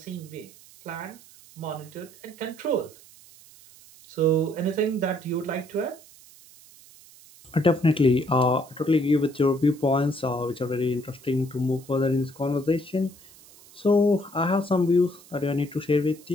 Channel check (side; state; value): right; noise; hiss, 23 dB below the sound